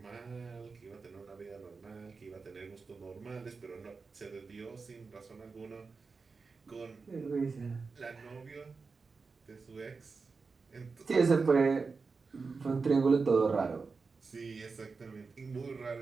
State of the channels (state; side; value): quieter; left; 4.5 dB